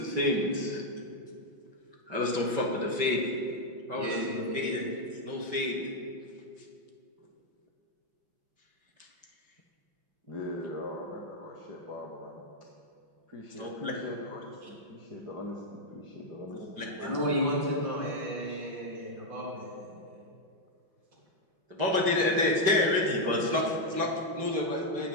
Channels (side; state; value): left; late; 5.2 ms